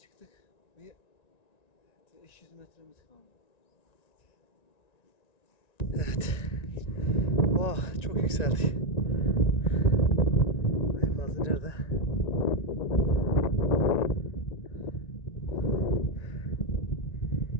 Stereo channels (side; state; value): right; late; 1.9 ms